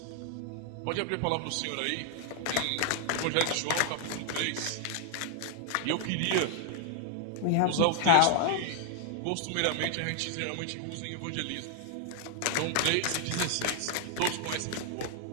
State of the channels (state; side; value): different; both; correlation 0.00